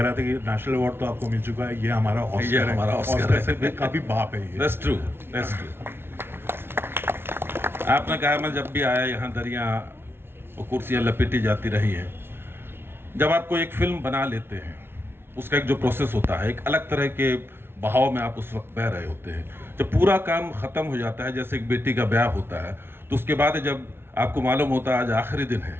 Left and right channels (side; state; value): left; late; 0.11 ms